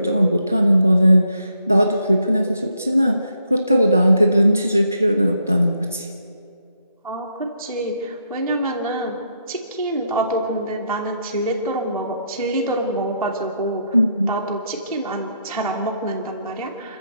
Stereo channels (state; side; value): inverted; both; correlation -0.77